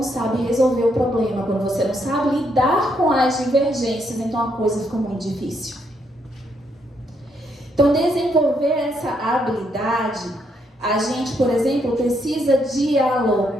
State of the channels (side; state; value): both; normal; correlation 0.75